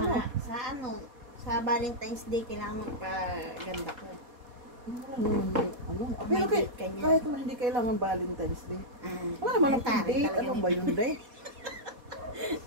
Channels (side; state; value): left; late; 4.2 ms